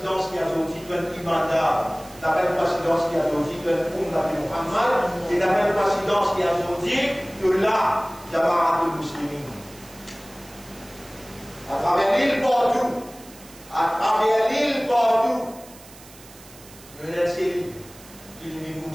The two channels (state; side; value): noise; right; hiss, 21 dB below the sound